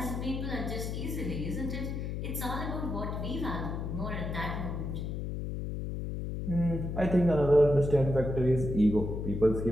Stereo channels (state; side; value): noise; left; hum, 4 dB below the sound